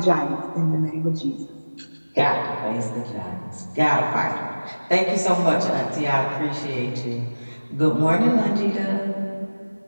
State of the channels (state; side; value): inverted; both; correlation -1.00